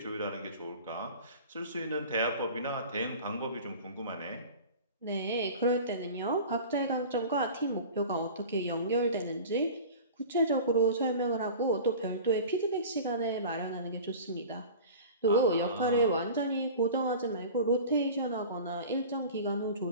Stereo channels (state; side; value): inverted; both; correlation -0.37